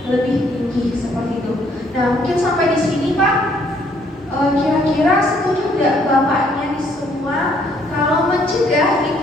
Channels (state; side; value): normal; both; correlation 0.66